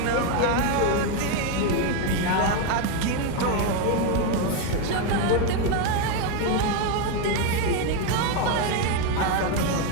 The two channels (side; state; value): both; different; correlation 0.02